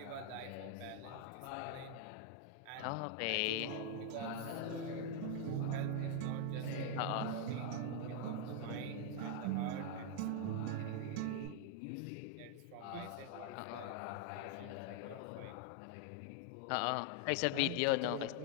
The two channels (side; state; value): both; different; correlation 0.00